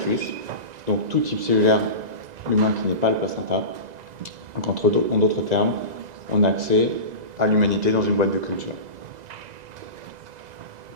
donc tout type cellulaire humain qui n'est pas le placenta. Donc en d'autres termes, on a accès à l'humanité dans une boîte de culture.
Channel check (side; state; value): left; late; 2.0 ms